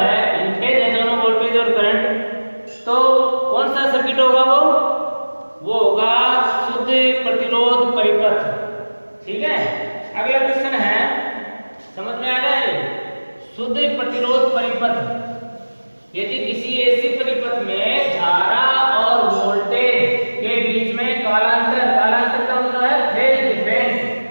इनफेज है दोनों वोल्टेज और करंट, तो कौन सा सर्किट होगा वो होगा शुद्ध प्रतिरोध परिपथ, ठीक है। अगला क्वेश्चन है, समझ में आ रहा है, शुद्ध प्रतिरोध परिपथ। यदि किसी ऐसी परिपथ में धारा और वोल्टेज के बीच में कालांतर, कालांतर का मतलब है फेज डिफरेंस,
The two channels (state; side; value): inverted; both; correlation -1.00